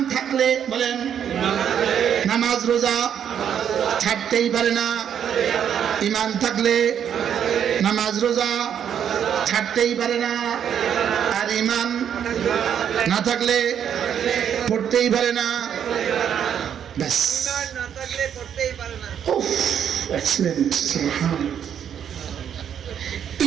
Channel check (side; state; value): left; quieter; 8.8 dB